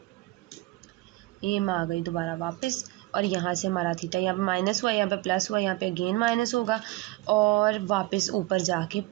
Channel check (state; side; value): quieter; left; 19.4 dB